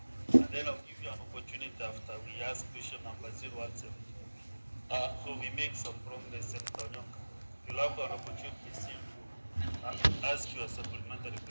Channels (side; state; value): both; inverted; correlation -1.00